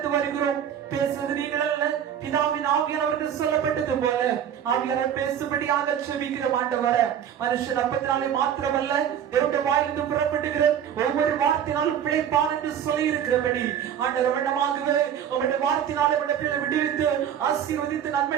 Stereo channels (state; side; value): quieter; left; 9.2 dB